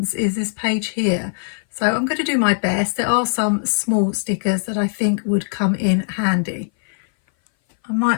is this page here. So I'm going to do my best. There are some small stickers that I think would come in handy. I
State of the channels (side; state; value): right; silent; 59 dB below the other